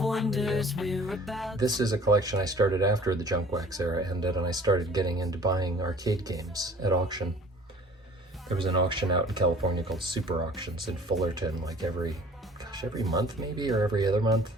wonders we're about. This is a collection I started after the junk wax era ended, and I started getting into buying arcade games at auction. There was an auction out in California called Super Auctions in Fullerton, like every month maybe, or every other month.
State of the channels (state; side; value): normal; both; correlation 0.49